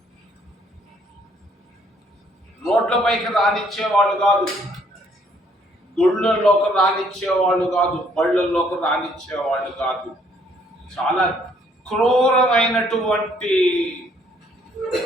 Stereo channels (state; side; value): normal; both; correlation 0.65